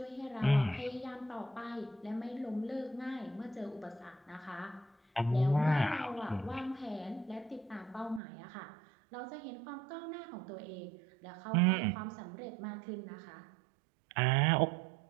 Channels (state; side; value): drops out; left; at 8.2 s